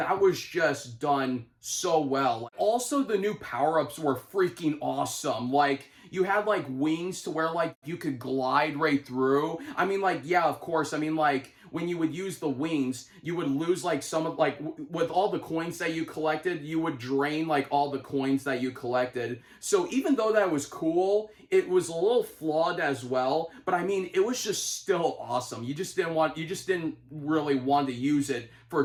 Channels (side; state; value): both; identical; correlation 1.00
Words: was just done so well. Also, the new power-ups were freaking awesome. Like, you had, like, wings to where, like, you could glide right through. I mean, like, yeah, of course. I mean, like, when you would use the wings, you would lose, like, some of, like, with all the coins that you collected, you would drain, like, all the coins that you collected. So even though that was cool, it was a little flawed as well. But, I mean, it was just still awesome. You just didn't really want to use it for